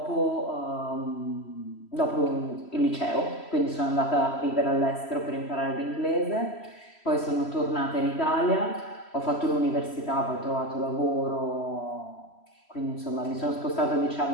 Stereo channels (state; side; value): late; right; 3.1 ms